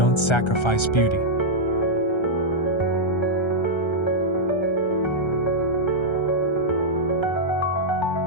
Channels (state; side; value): late; right; 1.3 ms